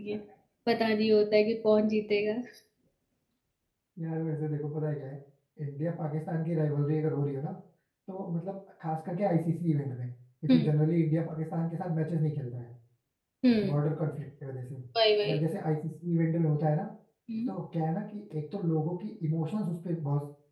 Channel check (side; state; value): both; identical; correlation 1.00